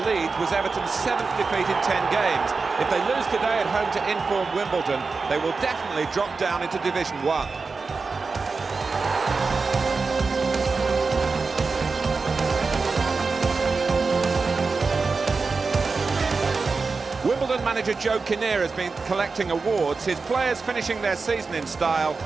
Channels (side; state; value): left; quieter; 4.3 dB